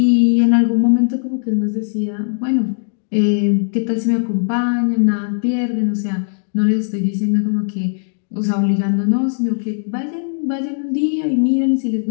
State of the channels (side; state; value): right; silent; digital silence